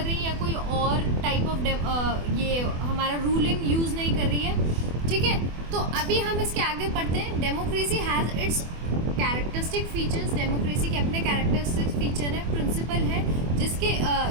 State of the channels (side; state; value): left; late; 24 ms